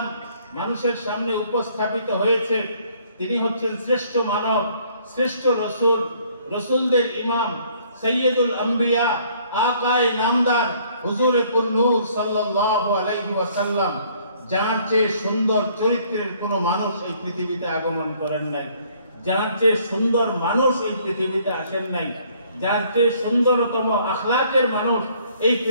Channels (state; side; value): inverted; both; correlation -0.62